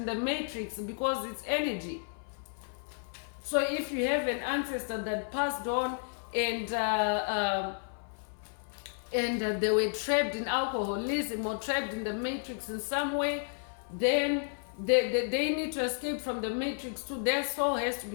the matrix because it's energy. So if you have an ancestor that passed on and they were trapped in alcoholism or trapped in the matrix in some way, then they need to escape from the matrix too. Their soul has to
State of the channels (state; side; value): silent; right; 56 dB below the other